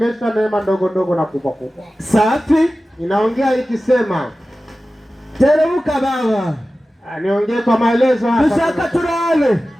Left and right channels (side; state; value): both; normal; correlation 0.95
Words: neema ndogo ndogo na kubwa kubwa. Safi. Inaongea ikisema teremuka baba. Niongee kwa maelezo hapa. Dushaka turabe